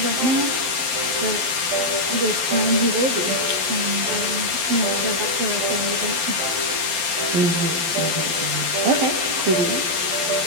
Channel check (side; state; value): left; late; 12 ms